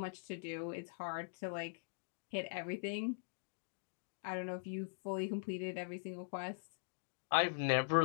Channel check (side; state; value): right; silent; digital silence